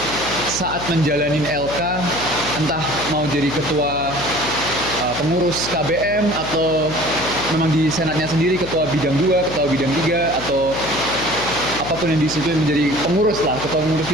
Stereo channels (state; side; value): noise; left; hum, 10 dB below the sound